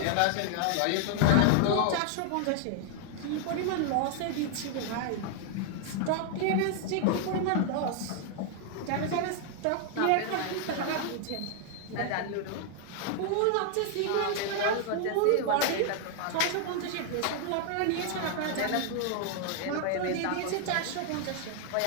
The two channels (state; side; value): different; both; correlation 0.00